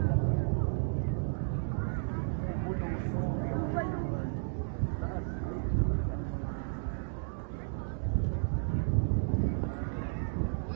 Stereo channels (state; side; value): silent; left; digital silence